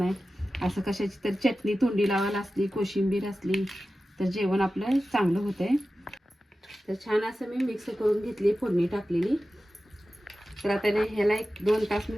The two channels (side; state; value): both; normal; correlation 0.94